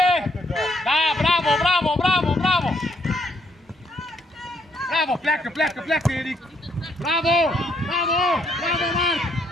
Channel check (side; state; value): both; normal; correlation 0.71